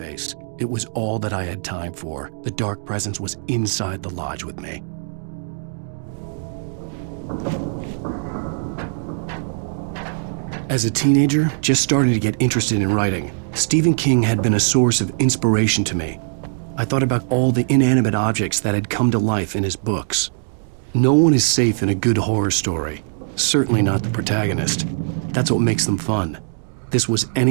It was all that I had time for. The dark presence was inside the lodge with me. As a teenager, just starting to get interested in writing, Stephen King had been a source of inspiration to me. I thought about all the inanimate objects that had come to life in his books. No one is safe in a good horror story. Certainly not the protagonist. That's what makes them fun. This was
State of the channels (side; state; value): left; silent; digital silence